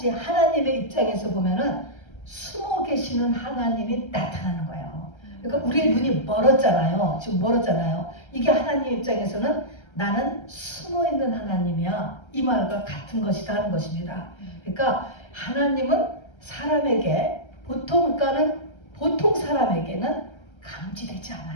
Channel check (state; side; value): late; right; 1.3 ms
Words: 하나님의 입장에서 보면은 숨어 계시는 하나님이 나타나는 거예요. 그러니까 우리의 눈이 멀었잖아요. 지금 멀었잖아요. 이게 하나님 입장에서는 나는 숨어 있는 하나님이야. 이 말과 같은 것이다 하는 것입니다. 그러니까 하나님은 사람에게 보통 사람에게는 감지되지